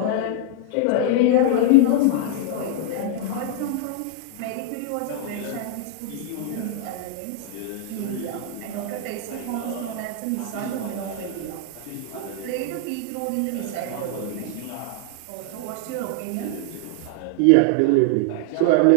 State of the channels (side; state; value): both; different; correlation 0.00